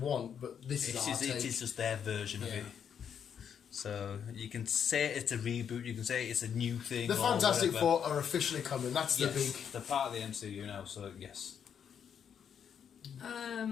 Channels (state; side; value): quieter; right; 8.0 dB